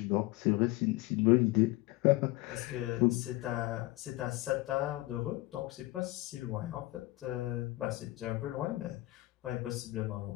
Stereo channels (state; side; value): quieter; right; 19.2 dB